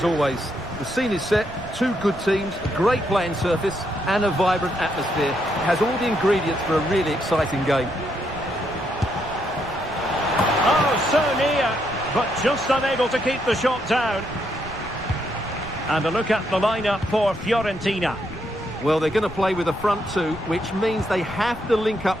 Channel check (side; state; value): right; noise; rumble, 16 dB below the sound